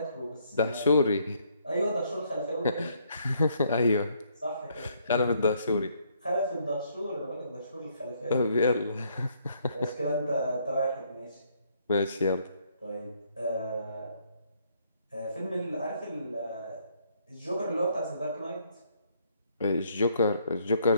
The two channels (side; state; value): both; inverted; correlation -0.69